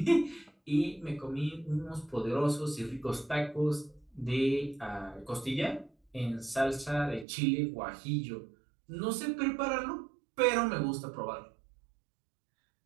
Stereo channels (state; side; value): drops out; left; at 7.2 s